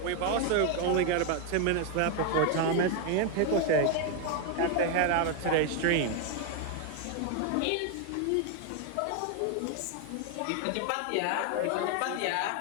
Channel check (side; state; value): both; different; correlation 0.01